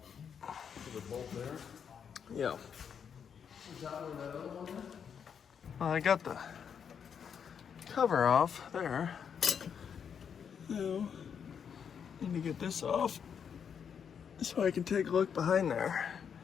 Is it bolt there? Yeah. Is that where that other one is? Well, I got the cover off there. Now, need to get this off so I can take a look behind there.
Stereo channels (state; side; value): quieter; right; 7.4 dB